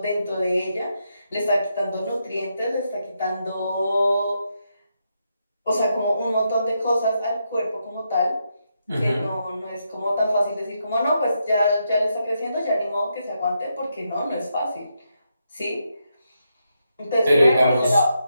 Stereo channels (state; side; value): inverted; both; correlation -0.82